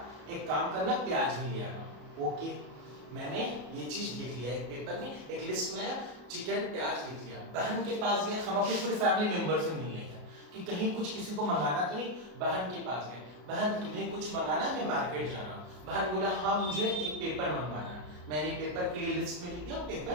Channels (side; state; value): left; late; 33 ms